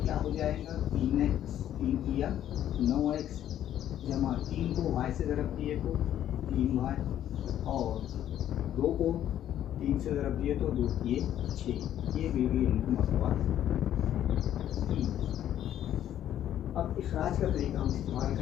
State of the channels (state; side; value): quieter; right; 11.3 dB